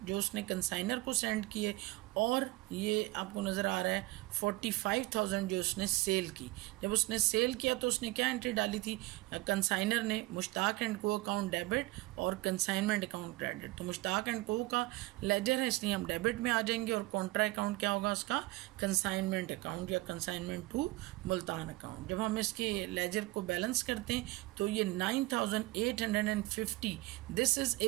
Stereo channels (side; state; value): left; quieter; 20.4 dB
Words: जो उसने कंसाइनर को सेंड किए, और ये आपको नज़र आ रहा है 45,000 जो उसने सेल की। जब उसने सेल किया तो उसने क्या एंट्री डाली थी? कंसाइनर ने Mushtaq and co account debit और कंसाइनमेंट अकाउंट क्रेडिट। तो मुश्ताक एंड को का लेजर है इसलिए हम डेबिट में आ जाएंगे, और कॉन्ट्रा अकाउंट क्या होगा उसका? कंसाइनमेंट अकाउंट या कंसाइनमेंट टू मुल्तान अकाउंट। जब हम इसके लेजर को बैलेंस करते हैं तो ये 9850 this is a